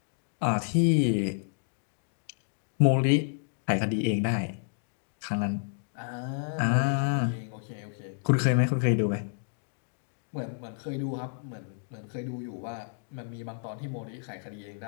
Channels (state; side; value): silent; right; digital silence